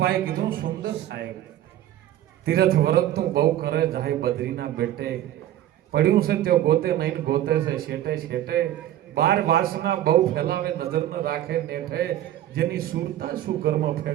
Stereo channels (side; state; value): left; quieter; 12.6 dB